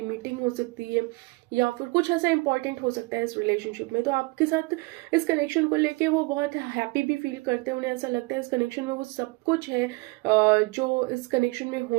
मीटिंग हो सकती है, या फिर कुछ ऐसा इंपॉर्टेंट हो सकता है इस रिलेशनशिप में। तो आपके साथ इस कनेक्शन को लेके वो बहुत हैप्पी भी फील करते हैं। उन्हें ऐसा लगता है इस कनेक्शन में वो सब कुछ है जो इस कनेक्शन में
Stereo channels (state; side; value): quieter; left; 25.2 dB